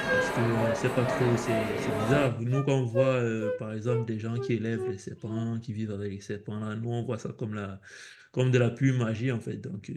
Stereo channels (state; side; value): identical; both; correlation 1.00